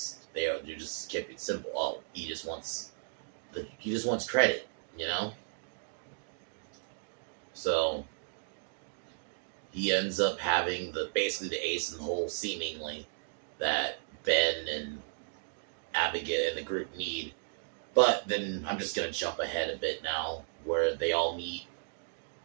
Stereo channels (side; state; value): left; silent; digital silence